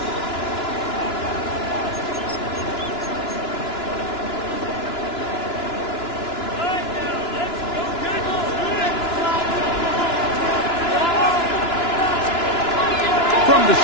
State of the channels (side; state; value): right; late; 2.9 ms